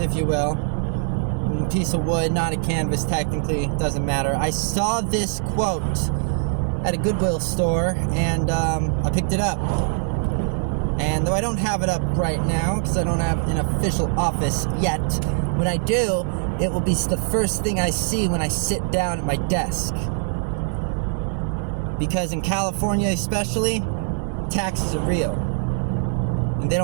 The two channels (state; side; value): silent; left; digital silence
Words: you will. A piece of wood, not a canvas technically, doesn't matter. I saw this quote at a Goodwill store, and I picked it up. And though I don't have it up right now, because I don't have an official office yet, when I do, it will be the first thing I see when I sit down at my desk. Because in California especially, taxes are real. And they